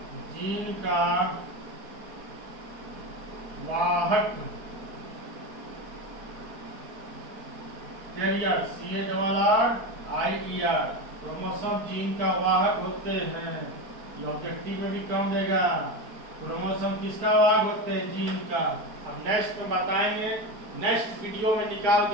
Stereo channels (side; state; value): left; late; 4.5 ms